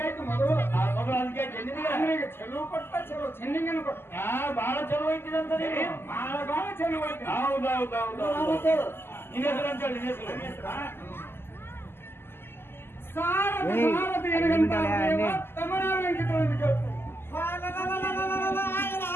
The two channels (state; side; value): late; right; 0.11 ms